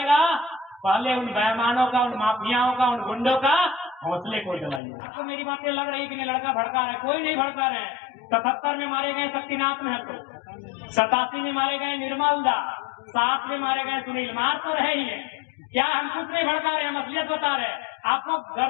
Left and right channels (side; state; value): right; drops out; at 4.8 s